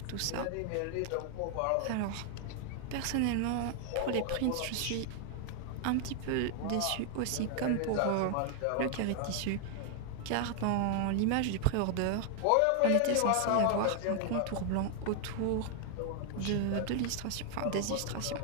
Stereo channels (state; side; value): different; both; correlation 0.00